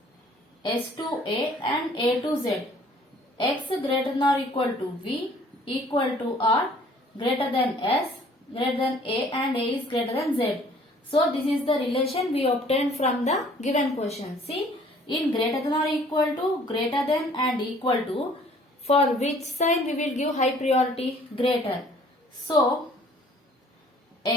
S to A and A to Z. X greater than or equal to V, equal to R, greater than S, greater than A and A is greater than Z. So this is the relation we obtained from the given question. See, in greater than or equal to, greater than and equal to, for which sign we will give high priority? Greater. So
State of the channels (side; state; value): both; normal; correlation 0.56